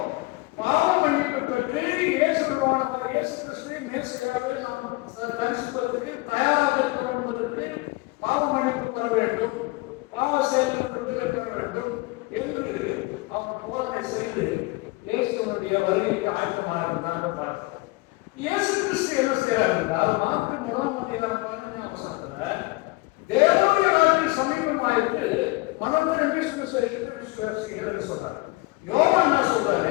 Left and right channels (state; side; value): quieter; right; 22.6 dB